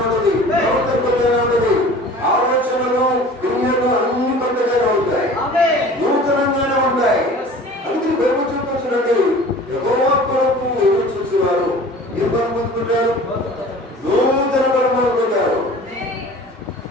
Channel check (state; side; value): normal; both; correlation 0.43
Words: ఉంటుంది, ప్రవర్తన కొత్తగానే ఉంటుంది, ఆలోచనలు దునియాలో అన్ని కొత్తగానే ఉంటాయి, నూతనంగానే ఉంటాయి. అందుకే బైబిల్ చూపించండి, యెహోవా కొరకు ఎదురు చూసేవారు ఏం బలం పొందుకుంటారు? నూతన బలం పొందుకుంటారు.